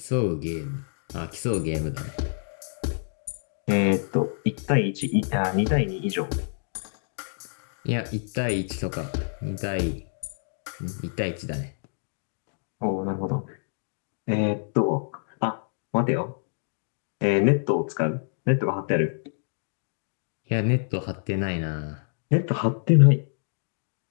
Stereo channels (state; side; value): silent; right; digital silence